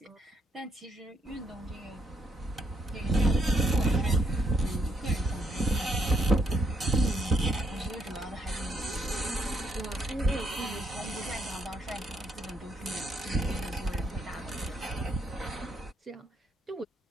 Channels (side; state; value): both; normal; correlation 0.74